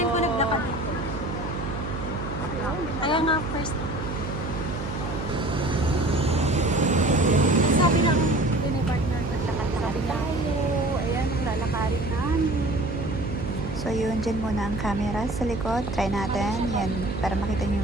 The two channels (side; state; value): right; noise; hum, 7 dB below the sound